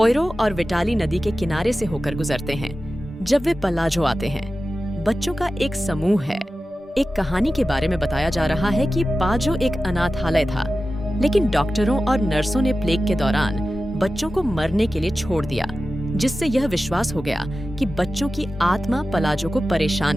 और विटाली नदी के किनारे से होकर गुजरते हैं। जब वे पलाजो आते हैं, बच्चों का एक समूह है। एक कहानी के बारे में बताया जा रहा है कि पाजो एक अनाथालय था, लेकिन डॉक्टरों और नर्सों ने प्लेग के दौरान बच्चों को मरने के लिए छोड़ दिया, जिससे यह विश्वास हो गया कि बच्चों की आत्मा पलाजो को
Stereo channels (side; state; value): both; normal; correlation 0.94